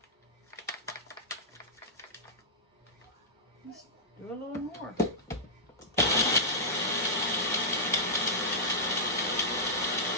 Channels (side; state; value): both; normal; correlation -0.12